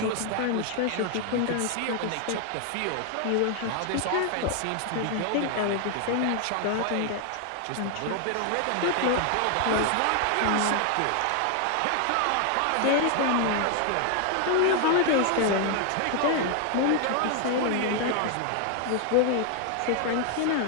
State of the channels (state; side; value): different; both; correlation 0.00